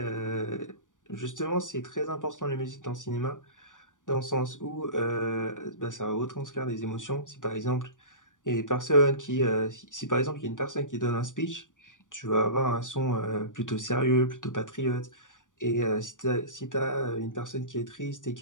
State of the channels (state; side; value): late; right; 0.87 ms